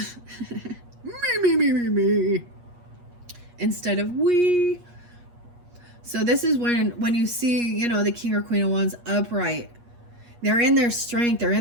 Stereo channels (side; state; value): left; late; 8.4 ms